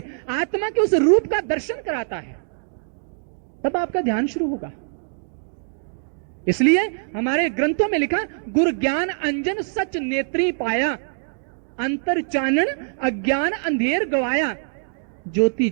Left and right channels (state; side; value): silent; left; digital silence